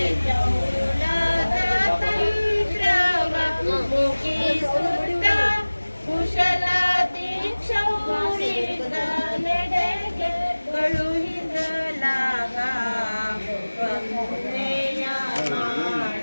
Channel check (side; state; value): both; inverted; correlation -1.00